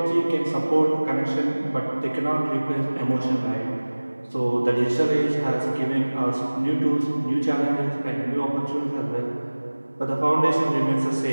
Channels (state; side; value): inverted; both; correlation -1.00